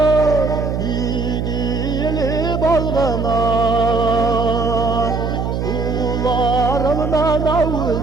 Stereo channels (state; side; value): noise; right; hum, 2 dB below the sound